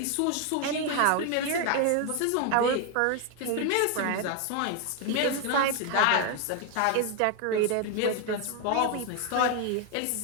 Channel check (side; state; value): both; different; correlation 0.01